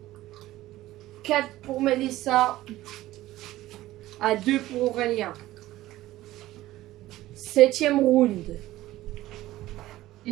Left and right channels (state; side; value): quieter; left; 16.0 dB